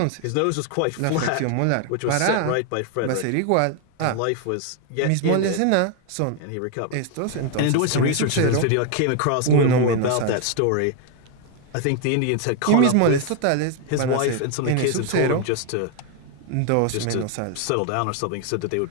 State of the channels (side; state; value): both; different; correlation 0.01